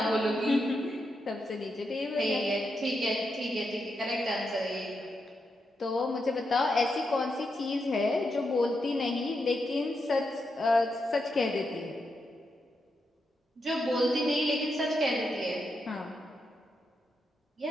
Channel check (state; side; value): normal; both; correlation 0.84